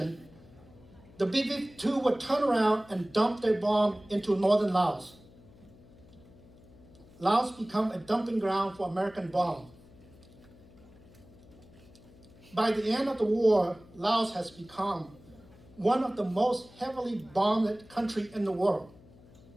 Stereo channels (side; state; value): left; noise; hum, 24 dB below the sound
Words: the B-52 would turn around and dump their bomb into northern Laos. Laos became a dumping ground for American bombs. By the end of the war, Laos has become one of the most heavily bombed countries in the world.